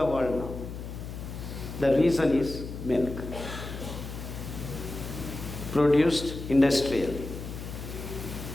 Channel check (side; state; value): left; noise; hum, 9 dB below the sound